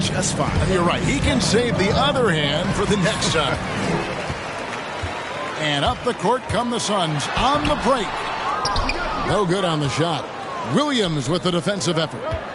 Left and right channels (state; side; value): identical; both; correlation 1.00